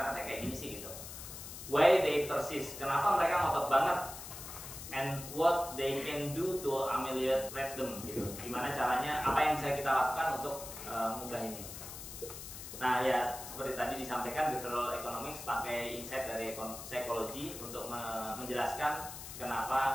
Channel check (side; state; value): left; noise; hiss, 11 dB below the sound